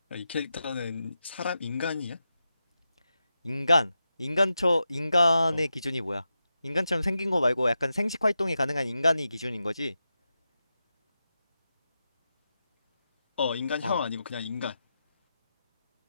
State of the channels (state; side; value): inverted; both; correlation -0.90